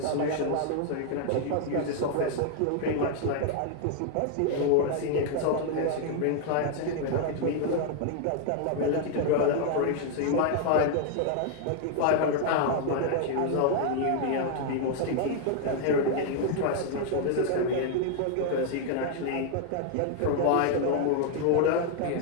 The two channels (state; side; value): different; both; correlation 0.00